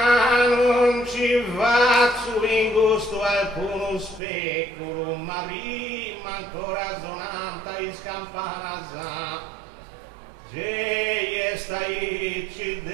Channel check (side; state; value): left; drops out; at 4.2 s